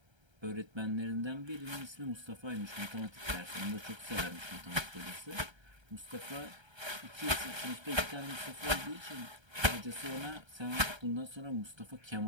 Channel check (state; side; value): late; left; 1.3 ms